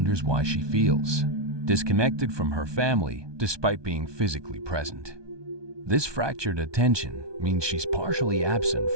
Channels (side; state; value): left; late; 1.2 ms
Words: why she feels disconnected from her family despite being physically present. This fractured attention means she's partially absent